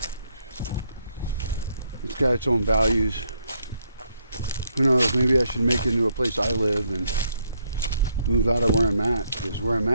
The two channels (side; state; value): both; inverted; correlation -0.73